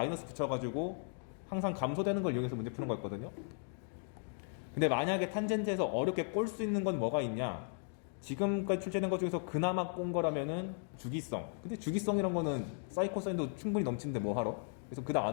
붙여가지고 항상 감소되는 걸 이용해서 문제 푸는 거였거든요. 근데 만약에 탄젠트에서 어렵게 꼴 수 있는 건 뭐가 있냐? 지금까지 출제된 것 중에서 그나마 꼰 거라면은 주기성. 근데 주기성이란 거는 사인 코사인도 충분히 넘치는데 뭐 하러? 그래서 그닥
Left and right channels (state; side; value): silent; right; 54 dB below the other